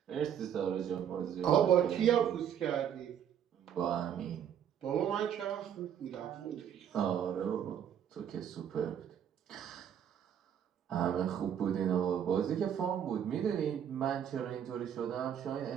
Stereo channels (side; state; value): left; quieter; 9.1 dB